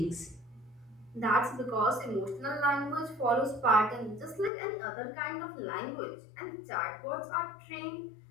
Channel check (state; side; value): drops out; right; at 4.5 s